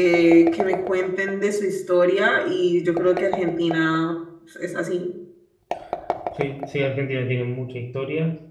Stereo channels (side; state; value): both; identical; correlation 1.00